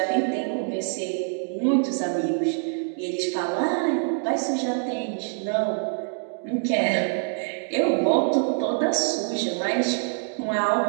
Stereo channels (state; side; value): silent; left; 58 dB below the other